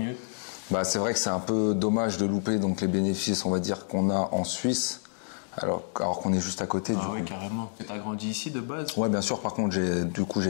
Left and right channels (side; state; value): right; silent; digital silence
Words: C'est vrai que c'est un peu dommage de louper donc les bénéfices on va dire qu'on a en Suisse alors qu'on est juste à côté. Ah oui, carrément. Tu as grandi ici de base? Ouais, bien sûr. Par contre